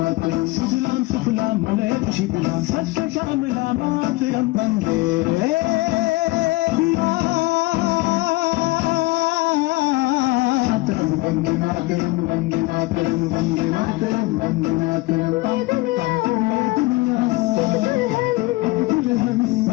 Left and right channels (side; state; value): right; quieter; 21.3 dB